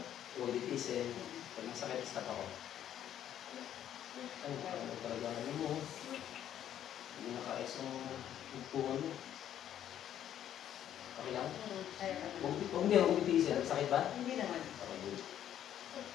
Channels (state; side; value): quieter; right; 10.7 dB